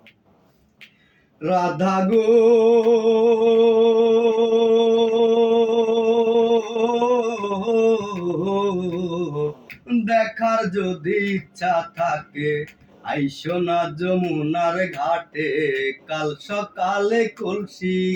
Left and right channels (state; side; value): identical; both; correlation 1.00